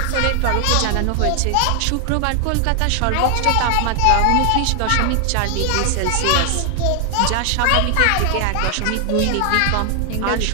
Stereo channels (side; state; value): both; different; correlation 0.00